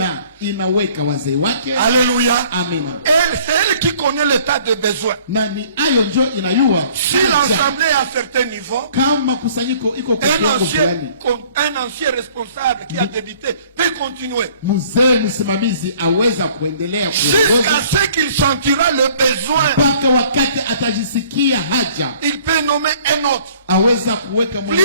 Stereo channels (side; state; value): both; inverted; correlation -0.55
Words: inaweka wazee wake. Alléluia. Amina. C'est elle qui connaît l'état de besoin. Na ni ayo njo inayua Si l'assemblée est à un certain niveau, kama kusanyiko iko kwa kiwango fulani, un ancien responsable qui a débuté peut continuer. mzee msimamizi aweza kuendelea Jusqu'à kuongoza ce qu'il sentira le besoin, mpaka wakati atajisikia haja, il peut nommer un autre. aweza kuweka Plus